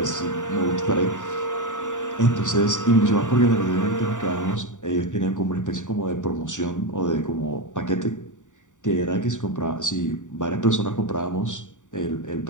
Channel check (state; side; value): late; right; 0.86 ms